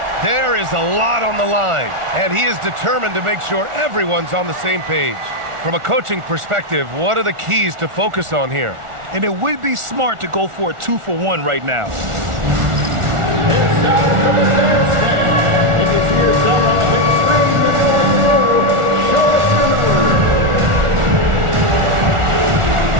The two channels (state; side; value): late; left; 1.4 ms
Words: There is a lot on the line, and he is determined to make sure everyone's on the same page. From a coaching perspective, what are the keys to focus on here? And it would be smart to go for a 2-for-1 right now. It's time for the dance stand. You can see yourself on the big screen. You're going forward. Show us your number.